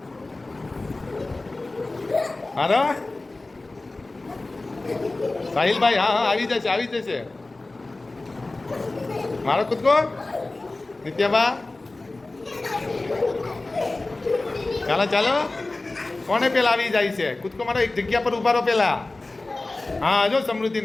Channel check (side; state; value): right; quieter; 3.1 dB